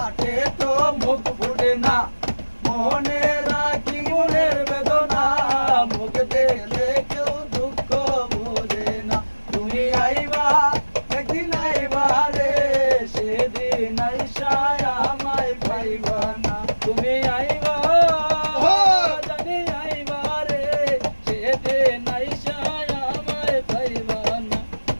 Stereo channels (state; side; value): inverted; both; correlation -1.00